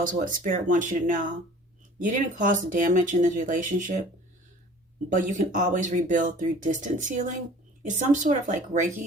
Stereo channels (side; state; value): both; normal; correlation 0.47